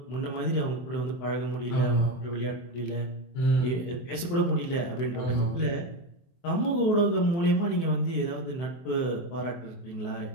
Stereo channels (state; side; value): late; right; 23 ms